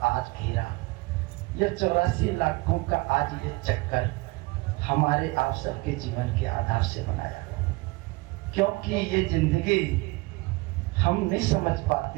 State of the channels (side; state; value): left; quieter; 23.7 dB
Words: आज घेरा। ये 84 लाखों का आज ये चक्कर हमारे आप सबके जीवन के आधार से बनाया, क्योंकि ये जिंदगी हम नहीं समझ